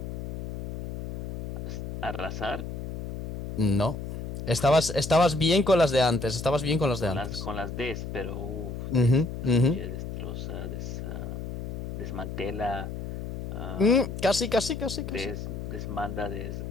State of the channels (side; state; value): left; noise; hum, 6 dB below the sound